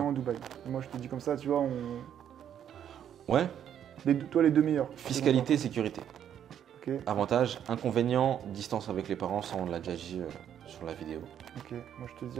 inconvénient. à Dubaï. Et moi je te dis comme ça, tu vois, Ouais, toi les 2 meilleurs. fiscalité, sécurité. Ok, Avantage, inconvénient, distance avec les parents, ça on l'a déjà dit sur la vidéo. ok. Moi je te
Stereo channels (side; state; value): left; quieter; 9.5 dB